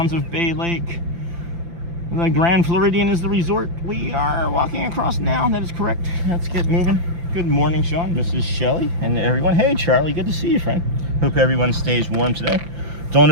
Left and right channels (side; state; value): left; late; 5.9 ms